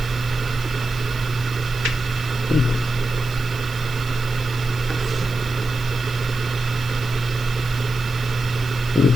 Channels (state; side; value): noise; right; hiss, 18 dB below the sound